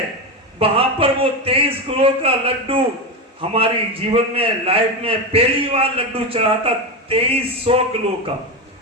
वहां पर वो 23 किलो का लड्डू, हमारी जीवन में लाइफ में पहली बार लड्डू चढ़ा था 2300 किलो का।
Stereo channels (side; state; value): both; normal; correlation 0.15